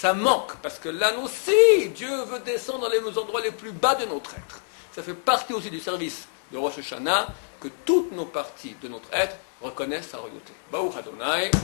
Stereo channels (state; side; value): silent; right; 61 dB below the other